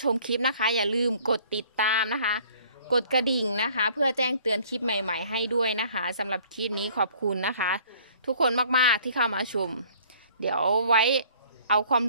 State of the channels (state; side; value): inverted; both; correlation -0.55